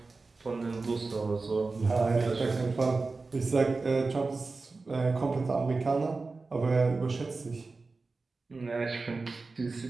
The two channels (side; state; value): left; quieter; 3.9 dB